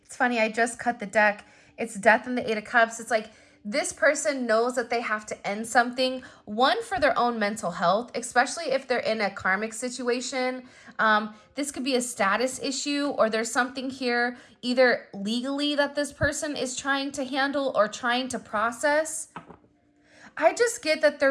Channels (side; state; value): both; identical; correlation 1.00